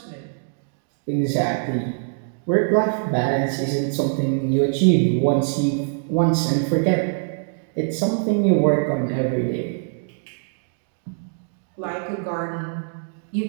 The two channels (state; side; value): silent; left; digital silence